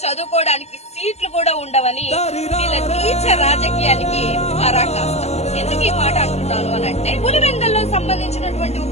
చదువుకోవడానికి సీట్లు కూడా ఉండవని వీళ్ళ నీచ రాజకీయానికి పరాకాష్ట. ఎందుకు ఈ మాట అంటున్నాను అని అంటే, పులివెందల్లో సంబంధించినటువంటి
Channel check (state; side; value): late; right; 0.31 ms